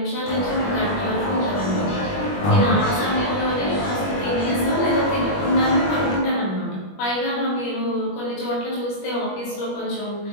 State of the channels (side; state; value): right; late; 21 ms